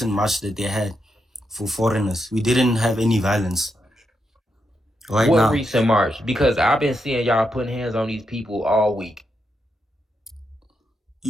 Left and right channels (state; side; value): normal; both; correlation 0.83